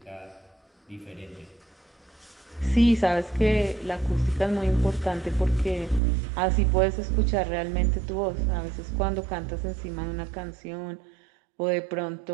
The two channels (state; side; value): drops out; left; at 6.0 s